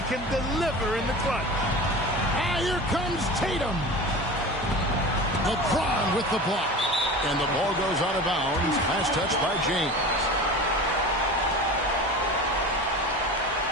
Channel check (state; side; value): normal; both; correlation 0.34